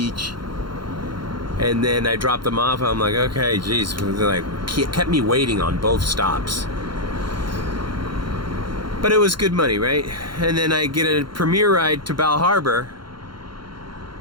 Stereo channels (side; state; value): left; late; 0.73 ms